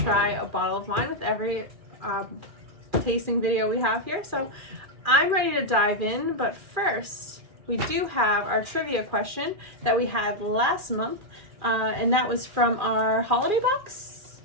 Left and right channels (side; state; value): left; late; 2.4 ms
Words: a bottle of wine with every tasting video we have here. So I'm ready to dive in, but first we do have our trivia question that we had last month, and that was from our holiday box.